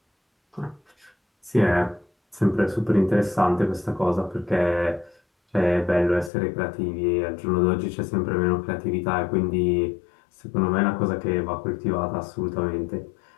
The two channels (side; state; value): right; drops out; at 6.3 s